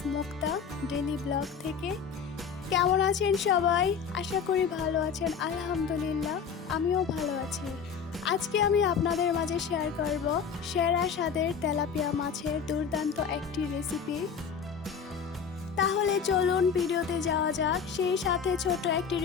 Mukta daily blog থেকে। কেমন আছেন সবাই? আশা করি ভালো আছেন। আলহামদুলিল্লাহ, আমিও ভালো আছি। আজকে আমি আপনাদের মাঝে শেয়ার করব সেরা স্বাদের তেলাপিয়া মাছের দুর্দান্ত একটি রেসিপি। তাহলে চলুন ভিডিওতে যাওয়া যাক। সেই সাথে ছোট একটি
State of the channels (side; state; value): right; quieter; 6.6 dB